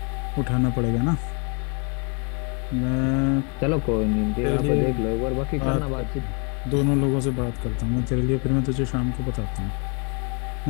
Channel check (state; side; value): quieter; right; 35.8 dB